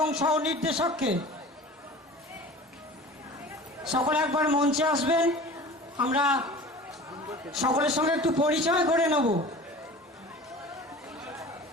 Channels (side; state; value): both; normal; correlation 0.39